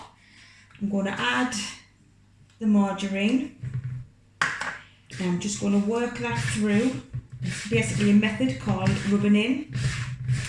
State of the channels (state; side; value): identical; both; correlation 1.00